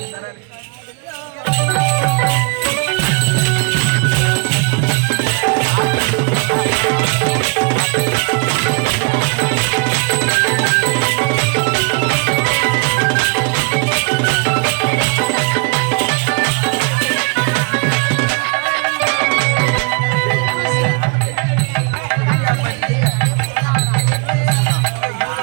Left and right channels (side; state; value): left; quieter; 35.2 dB